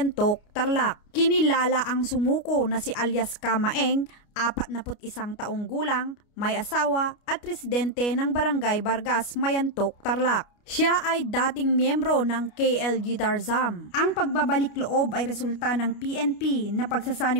Tarlac. Kinilala ang sumuko na si alias Kamaeng, 41 taong gulang, may asawa at residente ng Barangay Vargas, Mayantok, Tarlac. Siya ay dating miyembro ng KLG Tarzam. Ang pagbabalik loob ay resulta ng PNP na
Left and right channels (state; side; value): late; right; 29 ms